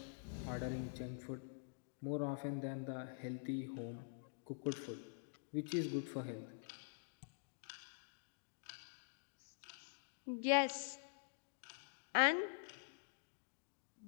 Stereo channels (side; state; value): right; silent; digital silence